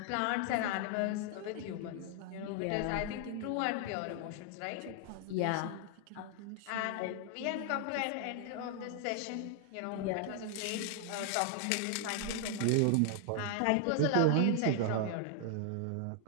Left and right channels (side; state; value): both; different; correlation 0.00